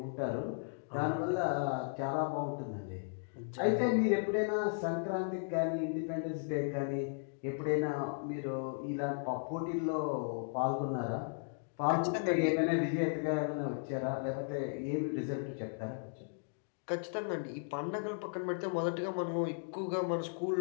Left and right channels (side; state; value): right; silent; digital silence